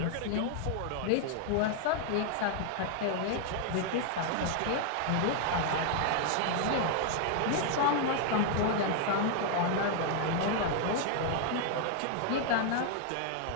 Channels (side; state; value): both; different; correlation 0.00